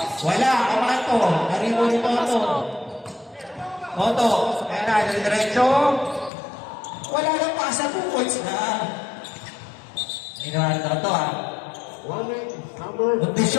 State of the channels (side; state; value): right; drops out; at 6.3 s